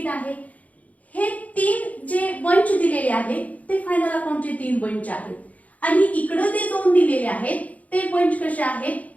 आहे. हे तीन जे बंच दिलेले आहेत ते फायनल अकाउंटचे 3 बंच आहेत. आणि इकडे ते 2 दिलेले आहेत ते बंच कसे आहेत?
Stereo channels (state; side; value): late; right; 0.072 ms